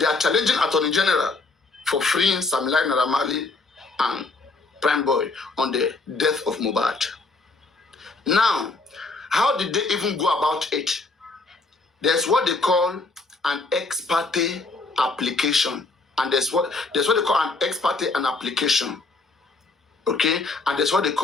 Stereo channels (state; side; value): quieter; right; 3.6 dB